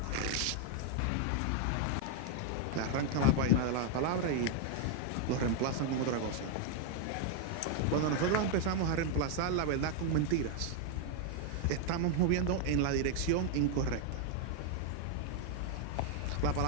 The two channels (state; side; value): different; both; correlation 0.00